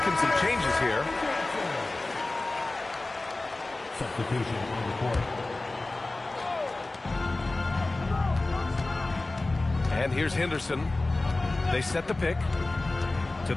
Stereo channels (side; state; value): right; quieter; 3.0 dB